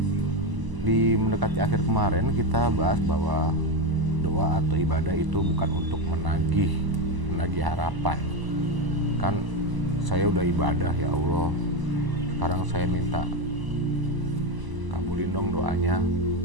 Di mendekati akhir kemarin kita bahas bahwa doa atau ibadah itu bukan untuk menagih harapan. Kan saya udah ibadah ya Allah, sekarang saya minta kabulin dong doanya.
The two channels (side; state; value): left; late; 1.0 ms